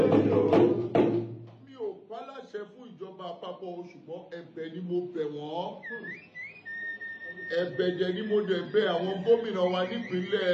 Mi ò pálàṣẹ fún ìjọba àpapọ̀, ṣùgbọ́n ẹ̀bẹ̀ ni mo bẹ̀ wọ́n. Ẹ̀bẹ̀ jẹ́ ni mo dẹ̀ bẹ̀ àwọn gómìnà wa nípínlẹ̀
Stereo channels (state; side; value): identical; both; correlation 1.00